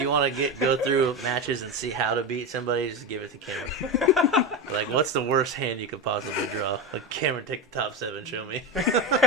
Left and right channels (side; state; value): both; normal; correlation 0.18